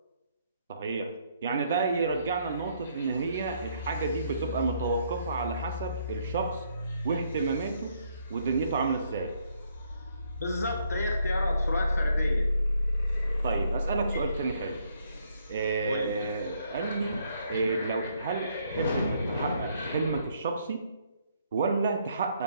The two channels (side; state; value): both; inverted; correlation -0.70